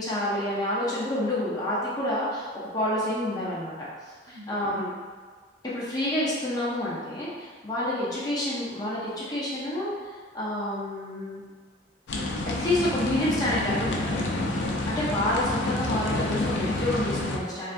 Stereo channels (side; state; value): both; normal; correlation 0.42